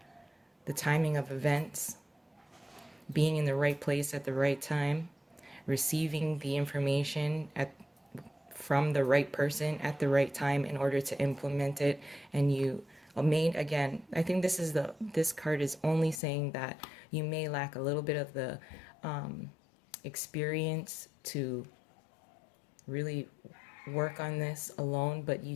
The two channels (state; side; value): drops out; right; at 16.2 s